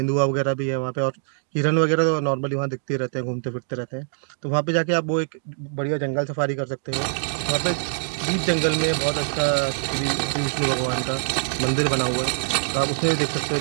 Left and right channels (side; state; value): left; silent; digital silence